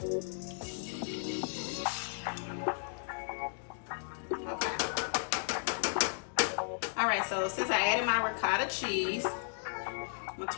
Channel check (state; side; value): silent; right; digital silence